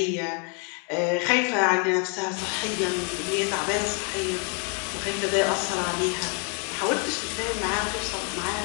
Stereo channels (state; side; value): quieter; right; 36.9 dB